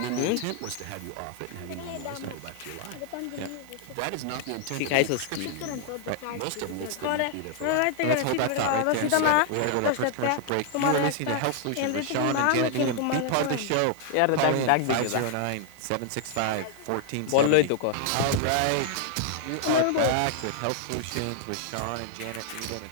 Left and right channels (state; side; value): different; both; correlation -0.01